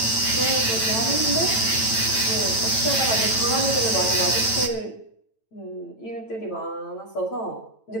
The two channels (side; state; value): right; late; 9.0 ms